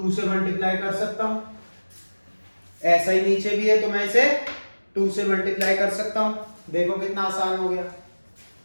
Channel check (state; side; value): inverted; both; correlation -1.00